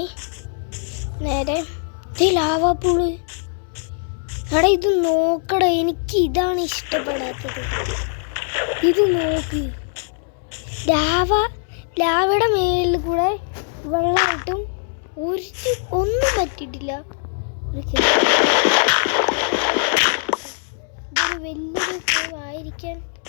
നേരെ ലാവാപ്പൂള്. എടാ ഇത് നോക്കടാ, എനിക്ക് ഇതാണ് ഇഷ്ടപ്പെടാത്തത്. ഇത് നോക്ക്, ലാവയുടെ മേലിൽ കൂടെ വെള്ളമായിട്ടും ഒന്നും പറ്റിയിട്ടില്ല. ഇതൊരു വലിയൊരു ആയിരിക്കാൻ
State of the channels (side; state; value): right; silent; 65 dB below the other